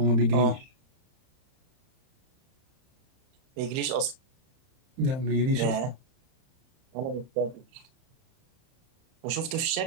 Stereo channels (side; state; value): left; late; 31 ms